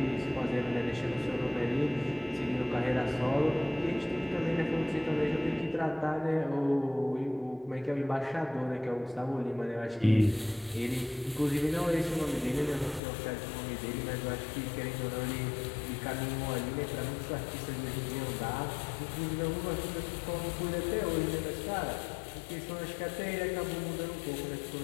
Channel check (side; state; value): right; drops out; at 13.0 s